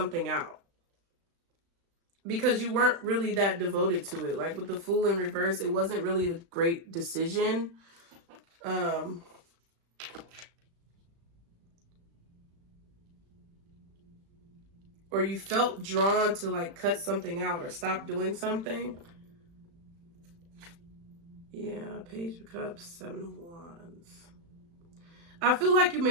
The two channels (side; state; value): left; late; 35 ms